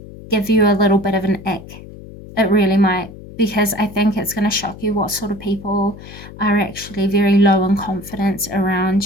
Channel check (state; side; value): noise; left; hum, 16 dB below the sound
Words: give you a little bit of an ick. It really might, because I think it's going to shock you what sort of people are actually very low in confidence